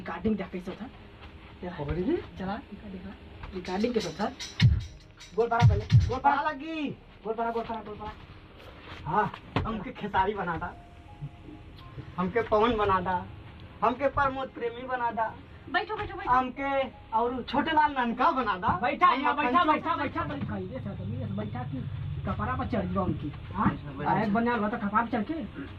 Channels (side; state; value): both; identical; correlation 1.00